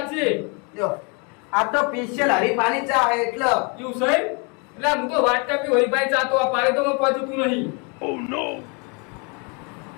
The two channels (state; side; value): quieter; right; 33.4 dB